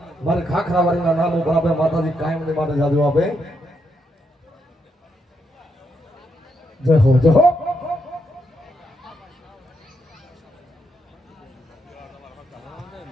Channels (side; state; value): both; normal; correlation 0.79